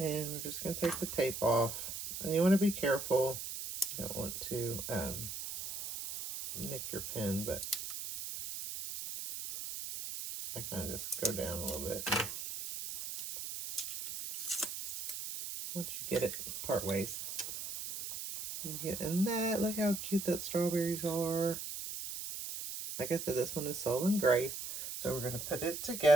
we're just going to take the tape off. And you want to be careful. You don't want to nick your pin, but I kind of just go down a little bit. Once you get it part ways. You get in that. Look how cute that strawberries are. Like I said, this one is Soul and Grace. So we're going to put it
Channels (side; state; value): right; noise; hiss, 6 dB below the sound